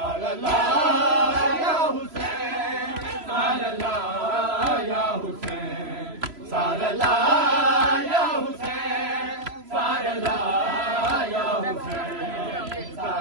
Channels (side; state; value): left; late; 3.0 ms